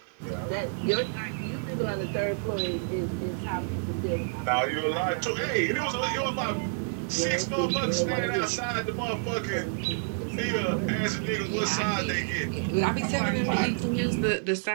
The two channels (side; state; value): left; silent; digital silence